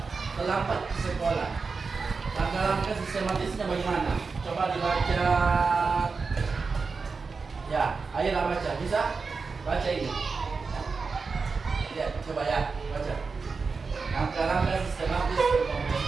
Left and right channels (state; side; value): quieter; left; 4.6 dB